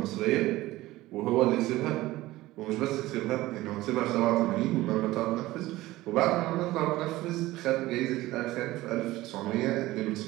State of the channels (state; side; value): quieter; left; 17.6 dB